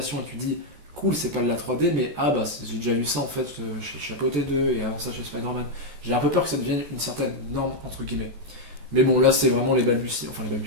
Et tu dis, cool, c'est pas de la 3D, mais j'ai déjà vu ça en fait chez Chapeau T2 et avant ça chez Spider-Man. J'ai un peu peur que ça devienne une certaine norme, entre guillemets. Mais bon, là, c'est vraiment les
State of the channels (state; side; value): late; left; 14 ms